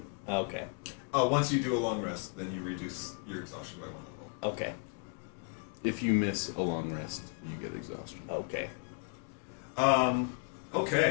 Okay. Once you do a long rest, then you reduce your exhaustion by 1 level. Okay. if you miss a long rest, you get exhaustion. Okay.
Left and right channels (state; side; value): quieter; right; 38.1 dB